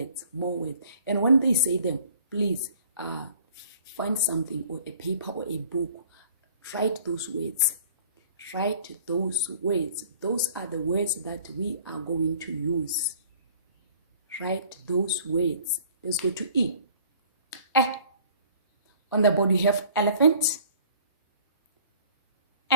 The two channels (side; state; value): both; inverted; correlation -0.51